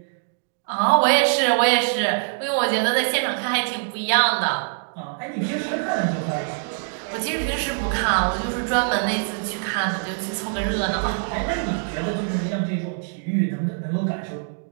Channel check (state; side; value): silent; left; digital silence